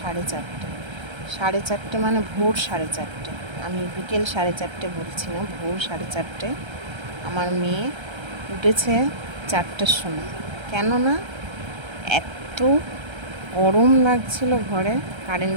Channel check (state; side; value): late; left; 1.3 ms